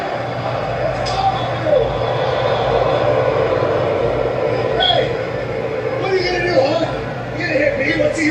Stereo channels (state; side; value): identical; both; correlation 1.00